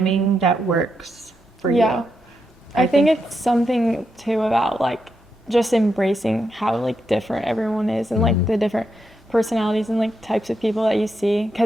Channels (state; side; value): normal; both; correlation 0.83